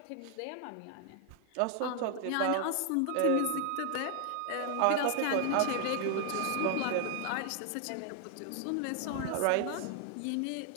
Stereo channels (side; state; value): both; different; correlation 0.00